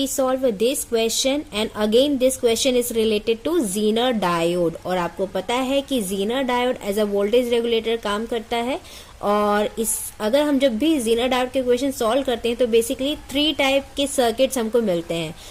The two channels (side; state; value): both; identical; correlation 1.00